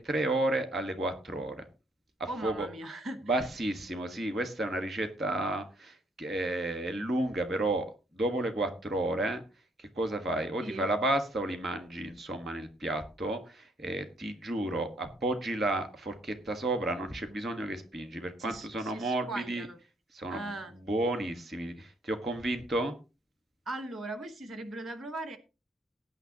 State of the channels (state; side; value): normal; both; correlation 0.67